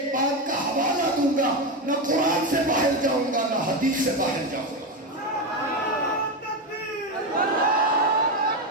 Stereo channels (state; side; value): normal; both; correlation 0.13